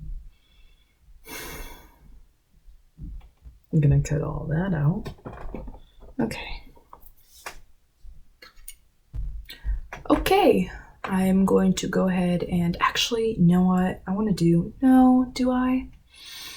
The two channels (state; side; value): identical; both; correlation 1.00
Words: I'm gonna cut all that out. Okay. Okay. I'm going to go ahead and actually, you know what I want to do? No, do I?